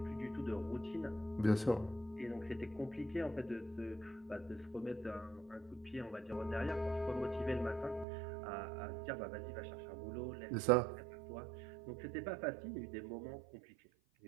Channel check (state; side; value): drops out; left; at 8.1 s